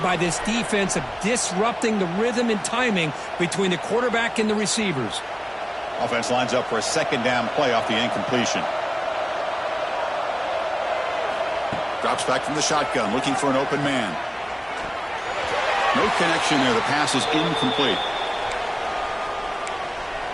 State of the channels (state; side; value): identical; both; correlation 1.00